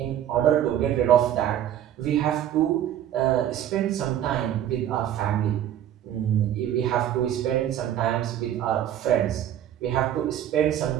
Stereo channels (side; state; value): left; quieter; 11.0 dB